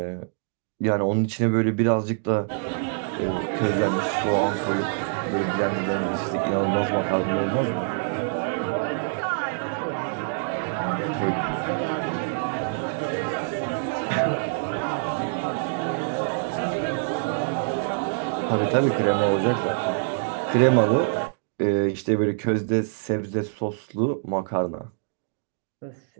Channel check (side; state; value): left; silent; digital silence